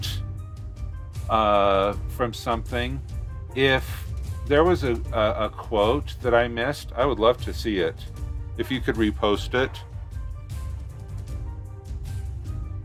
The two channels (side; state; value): both; identical; correlation 1.00